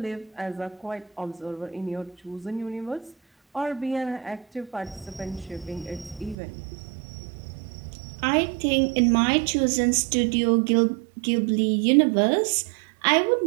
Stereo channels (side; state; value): left; drops out; at 6.4 s